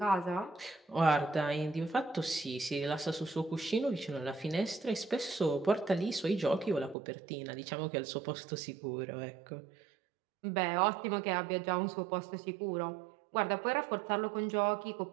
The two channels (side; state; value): left; drops out; at 7.0 s